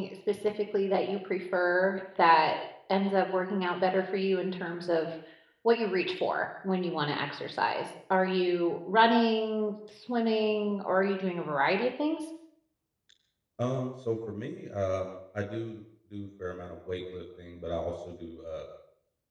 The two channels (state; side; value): identical; both; correlation 1.00